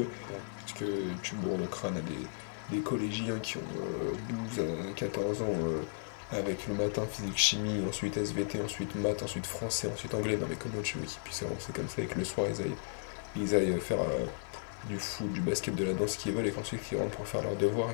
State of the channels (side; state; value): right; silent; digital silence